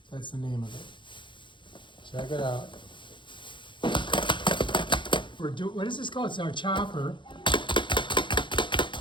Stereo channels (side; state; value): right; late; 0.23 ms